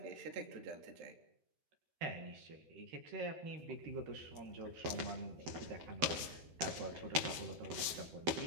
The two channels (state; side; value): late; left; 12 ms